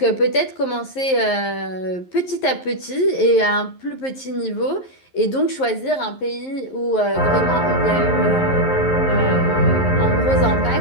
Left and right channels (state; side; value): late; right; 11 ms